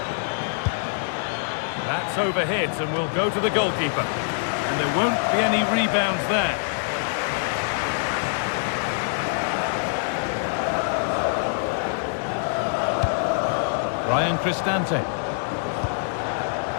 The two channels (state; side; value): silent; right; digital silence